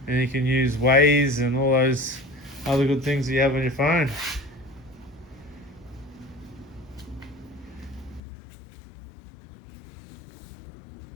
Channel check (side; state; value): right; drops out; at 8.2 s